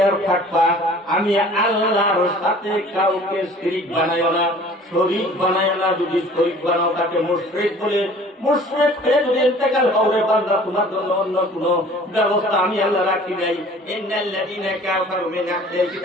থাকবা, আমি আল্লাহর সাথে কাউকে শিরিক বানাইও না, শরীক বানাইও না। যদি শরীক বানাও তাকে মুশরিক বলে, মুশরিক হয়ে যদি ইন্তেকাল হবে বান্দা, তোমার জন্য অন্য কোনো ব্যবস্থা আমি আল্লাহ রাখি নাই। ইন্নাল্লাযীনা কাফারু মিন আহলিল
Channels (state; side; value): normal; both; correlation 0.48